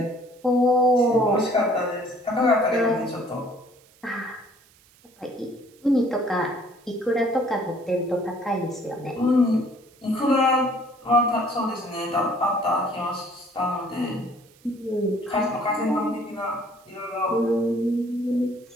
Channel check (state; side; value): noise; right; hiss, 29 dB below the sound